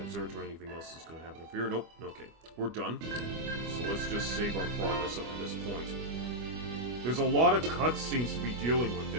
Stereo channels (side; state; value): left; late; 25 ms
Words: observatory. Anything else is going to happen up here? Nope. Okay, we're done. So let's just save our progress up to this point. There's a lot of cutscenes to be dealing with